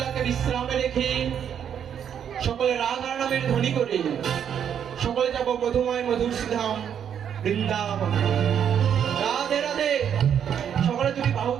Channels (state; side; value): quieter; left; 8.6 dB